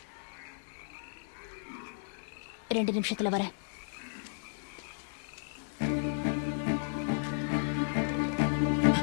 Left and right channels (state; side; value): silent; right; digital silence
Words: 2 நிமிஷத்துல வரேன்.